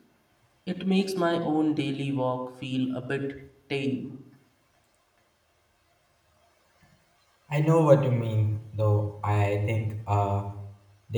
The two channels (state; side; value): identical; both; correlation 1.00